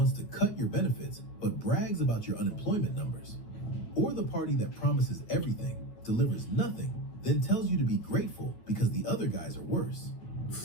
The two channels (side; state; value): right; late; 9.5 ms